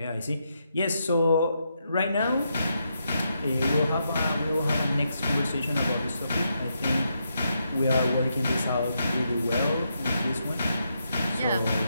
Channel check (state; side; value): inverted; both; correlation -0.81